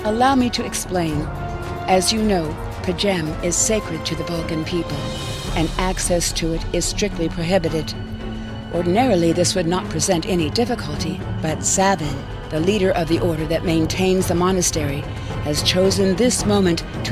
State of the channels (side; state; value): both; identical; correlation 1.00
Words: Allow me to explain. As you know, Pajem is sacred to the Vulcan people, and access to it is strictly prohibited. Ordinarily, this would not present any difficulty, but Sabin, the leader of the order that maintains the monastery, has chosen this moment